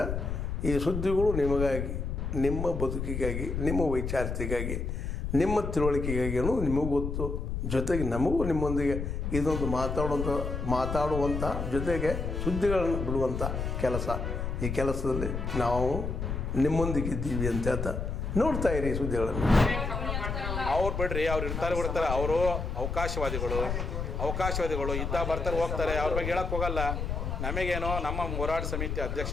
ಈ ಸುದ್ದಿಗಳು ನಿಮಗಾಗಿ, ನಿಮ್ಮ ಬದುಕಿಗಾಗಿ, ನಿಮ್ಮ ವೈಚಾರಿಕೆಗಾಗಿ, ನಿಮ್ಮ ತಿಳುವಳಿಕೆಗಾಗಿ ಅನ್ನೋದು ನಿಮಗೂ ಗೊತ್ತು. ಜೊತೆಗೆ ನಮಗೂ ನಿಮ್ಮೊಂದಿಗೆ ಇದೊಂದು ಮಾತಾಡುವಂಥ ಜೊತೆಗೆ ಸುದ್ದಿಗಳನ್ನು ಬಿಡುವಂಥ ಕೆಲಸ. ಈ ಕೆಲಸದಲ್ಲಿ ನಾವು ನಿಮ್ಮೊಂದಿಗಿದ್ದೀವಿ ಅಂತ ಹೇಳ್ತಾ ನೋಡ್ತಾ ಇರಿ ಈ ಸುದ್ದಿಗಳನ್ನು. ಅವ್ರು ಬಿಡ್ರಿ, ಅವ್ರು ಇರ್ತಾರೆ ಬಿಡ್ತಾರೆ. ಅವರು ಅವಕಾಶವಾದಿಗಳು ಇದ್ದ ಬರ್ತಾರೆ ಹೋಗ್ತಾರೆ. ಅವ್ರ ಬಗ್ಗೆ ಹೇಳಕ್ಕೆ ಹೋಗಲ್ಲ. ನಮಗೇನೋ ನಮ್ಮ ಹೋರಾಟ ಸಮಿತಿ ಅಧ್ಯಕ್ಷ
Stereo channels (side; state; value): left; noise; rumble, 3 dB below the sound